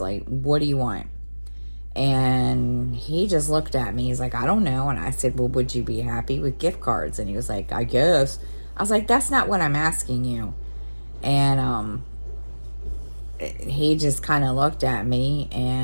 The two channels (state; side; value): inverted; both; correlation -1.00